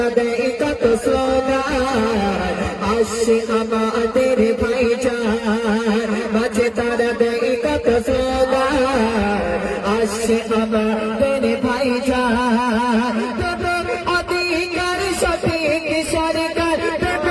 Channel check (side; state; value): both; identical; correlation 1.00